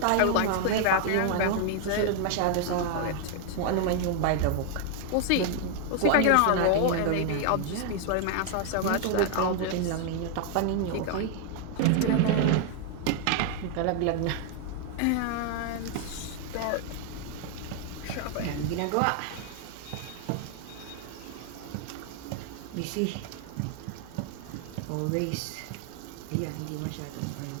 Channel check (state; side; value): different; both; correlation 0.00